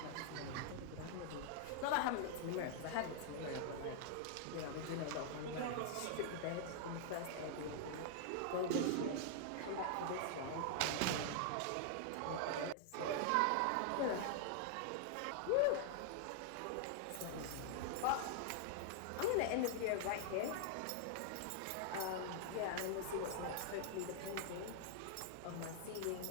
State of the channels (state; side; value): different; both; correlation -0.01